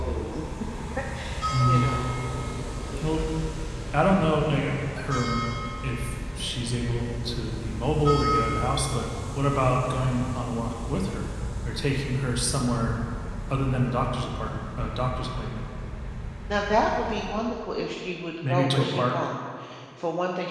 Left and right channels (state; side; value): identical; both; correlation 1.00